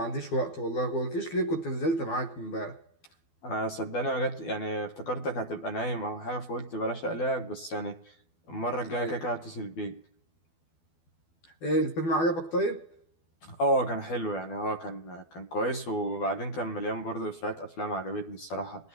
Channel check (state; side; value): late; right; 12 ms